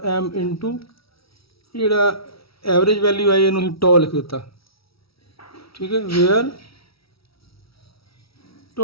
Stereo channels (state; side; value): late; right; 0.76 ms